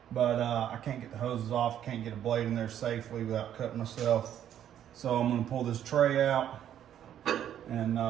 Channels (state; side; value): quieter; left; 10.4 dB